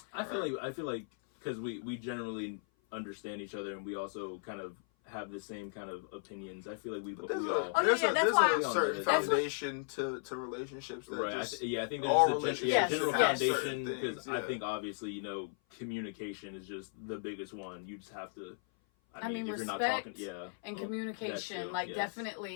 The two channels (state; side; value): silent; right; 54 dB below the other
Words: I feel like because we generally understand each other and we also kind of have the same kind of opinions. I feel like we all There's that's a why certain that's foundation to relationships. That right. just, I think all there's a relationships general have foundation certain because things, I yeah. think obviously communication is just the biggest one. You just have to. I mean, if you're not respect talking, yeah, and Well, communication, that too, like yes.